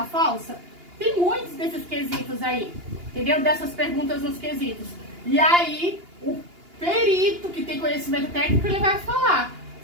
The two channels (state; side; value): late; left; 2.8 ms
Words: falsa? Tem muitos desses quesitos aí, entendeu? Dessas perguntas nos quesitos. E aí, o perito que tem conhecimento técnico, ele vai falar